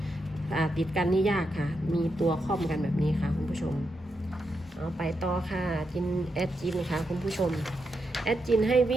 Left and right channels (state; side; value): normal; both; correlation 0.84